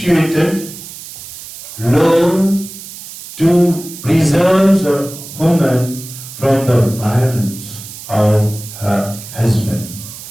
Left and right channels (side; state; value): right; noise; hiss, 14 dB below the sound